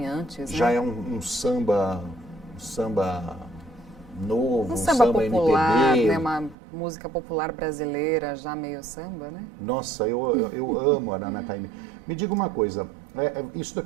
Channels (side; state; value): left; drops out; at 6.6 s